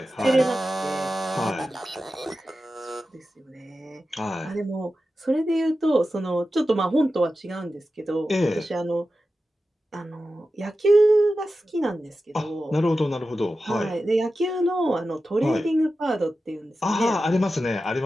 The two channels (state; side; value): normal; both; correlation 0.92